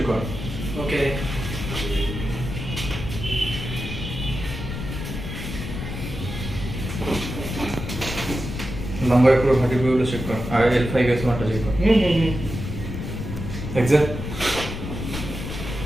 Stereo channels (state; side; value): noise; left; rumble, 6 dB below the sound